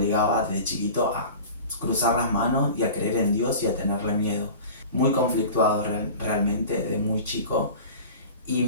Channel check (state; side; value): inverted; both; correlation -0.37